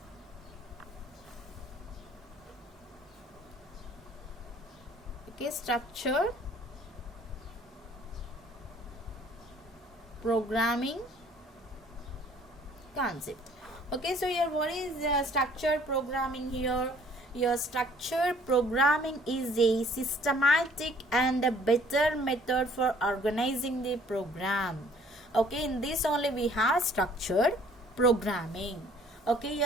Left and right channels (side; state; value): both; normal; correlation 0.57